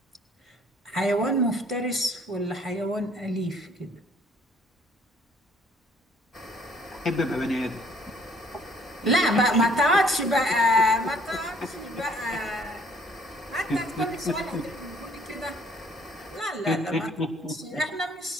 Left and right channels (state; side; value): normal; both; correlation 0.60